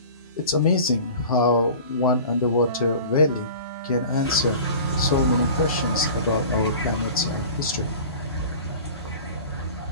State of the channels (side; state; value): both; inverted; correlation -0.39